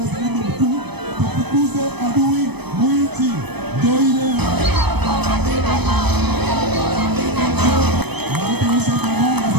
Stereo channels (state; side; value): late; left; 0.98 ms